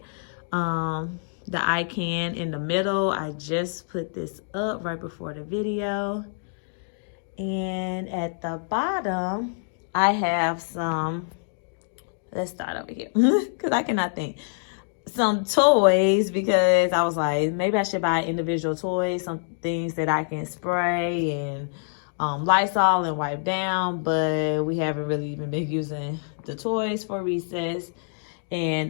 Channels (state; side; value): silent; right; digital silence